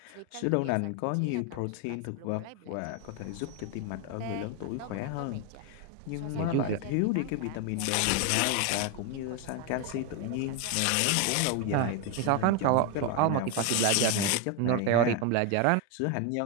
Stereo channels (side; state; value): both; different; correlation 0.02